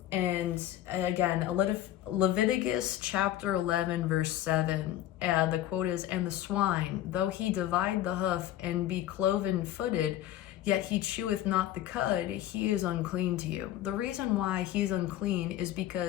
And again, Leviticus chapter 11, verse 7, the quote is, "And the swine, though he divide the hoof and be cloven-footed, yet he cheweth not the cud, he is unclean to you." The reason why he's unclean is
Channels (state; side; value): quieter; right; 13.0 dB